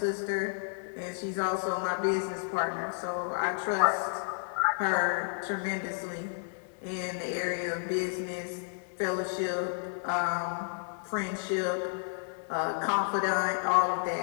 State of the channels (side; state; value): right; silent; 57 dB below the other